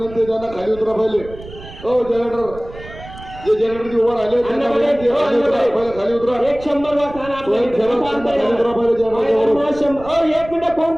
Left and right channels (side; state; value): right; noise; rumble, 16 dB below the sound